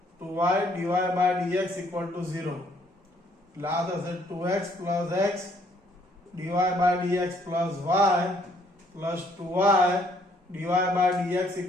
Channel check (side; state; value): both; normal; correlation 0.66